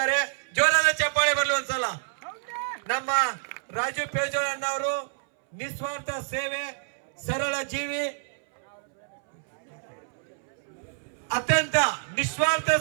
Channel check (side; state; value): left; silent; 60 dB below the other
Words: ಜೋರಾದ ಚಪ್ಪಾಳೆ ಬರ್ಲಿ ಒಂದ್ಸಲ. ನಮ್ಮ ರಾಜು ಪೇಜೋಳ ಅಣ್ಣವರು ನಿಸ್ವಾರ್ಥ ಸೇವೆ, ಸರಳ ಜೀವಿ, ಅತ್ಯಂತ ನಿಸ್ವಾರ್ಥ